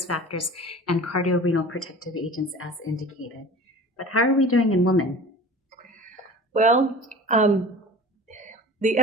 factors, and cardiorenal protective agents as indicated. But how are we doing in women? Well, the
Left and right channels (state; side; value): normal; both; correlation 0.40